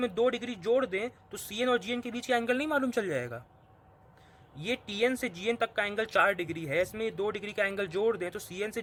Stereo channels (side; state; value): both; identical; correlation 1.00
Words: 2 डिग्री जोड़ दें तो CN और GN के बीच का एंगल नहीं मालूम चल जाएगा। ये TN से GN तक का एंगल 4 डिग्री है, इसमें 2 डिग्री का एंगल जोड़ दें तो CN से